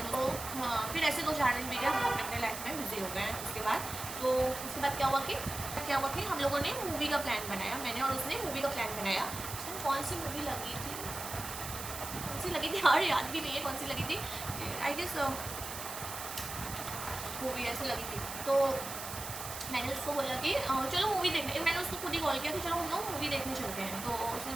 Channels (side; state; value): right; noise; hiss, 8 dB below the sound